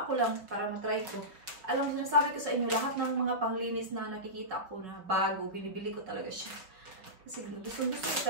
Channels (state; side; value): late; left; 5.4 ms